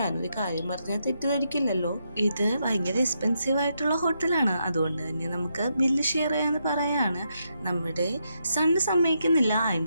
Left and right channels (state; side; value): inverted; both; correlation -0.81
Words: ഞാനൊരു കാര്യം പറഞ്ഞാൽ തെറ്റിദ്ധരിക്കില്ലല്ലോ, ഇത് ഭയങ്കര എക്സ്പെൻസീവ് ആയിട്ടുള്ള ഹോട്ടലാണ്, അതുകൊണ്ട് തന്നെ നമുക്ക് ബില്ല് ഷെയർ ചെയ്യാന്ന് പറയാണ്. നമ്മുടെ സണ്ണ് സമ്മതിക്കുന്നില്ല,